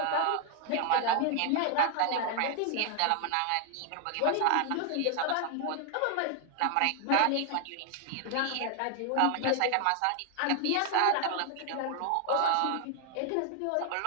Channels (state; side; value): different; both; correlation 0.00